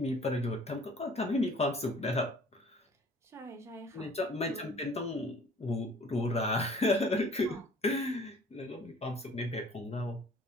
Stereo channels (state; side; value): normal; both; correlation 0.52